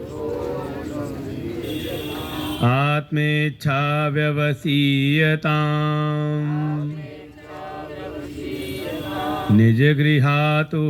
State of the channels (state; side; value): identical; both; correlation 1.00